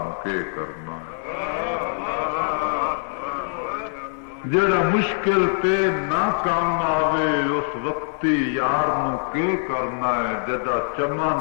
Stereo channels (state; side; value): silent; right; 63 dB below the other